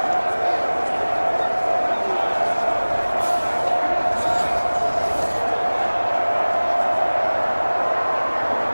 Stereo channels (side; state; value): both; inverted; correlation -1.00